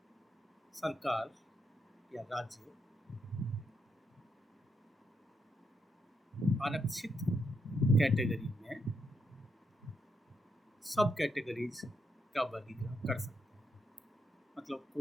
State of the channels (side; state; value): both; normal; correlation 0.80